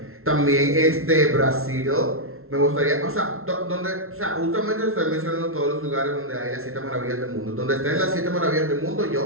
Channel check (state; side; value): late; left; 0.62 ms